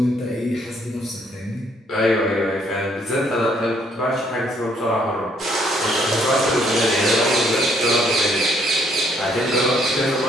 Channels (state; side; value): normal; both; correlation 0.67